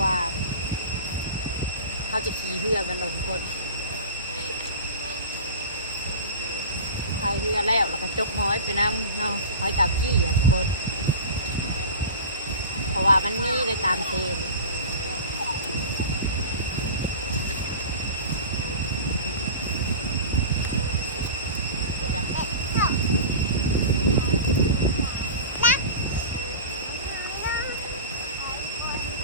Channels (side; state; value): both; inverted; correlation -0.33